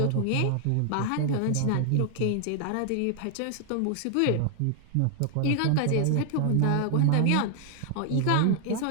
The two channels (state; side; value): different; both; correlation 0.00